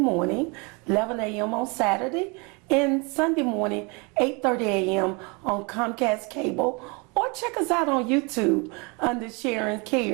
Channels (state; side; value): quieter; left; 30.3 dB